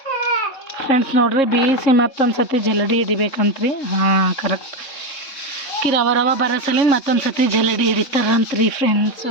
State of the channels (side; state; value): right; late; 3.6 ms